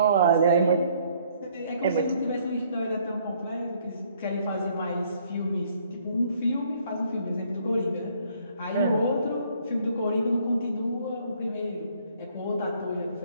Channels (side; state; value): both; inverted; correlation -0.63